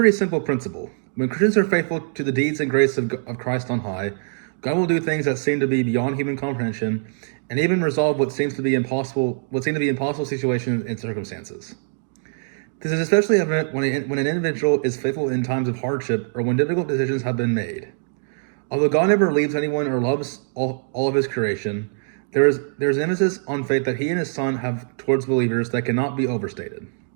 simple principle. When Christians are faithful to the deeds and grace of Christ on high, God will do things that seem to be beyond human comprehension, and even resolve what seem to be impossible situations and circumstances. This is especially evident when an individual is faithful in times of hardship or when difficult decisions have been made. Although God never leaves anyone or loves all of his creation, there is an emphasis on faith that he and his Son have towards believers that cannot be overstated.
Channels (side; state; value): left; silent; digital silence